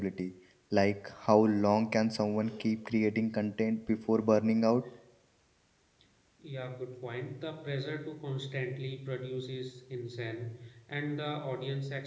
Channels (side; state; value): both; identical; correlation 1.00